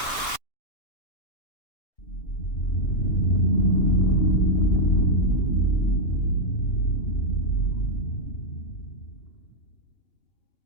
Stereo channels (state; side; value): late; right; 2.9 ms